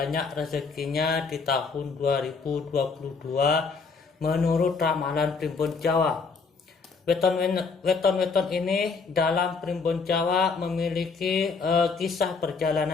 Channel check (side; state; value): right; quieter; 4.8 dB